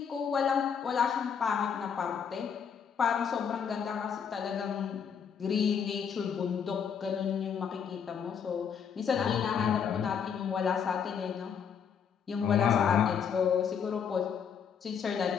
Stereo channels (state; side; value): quieter; right; 7.3 dB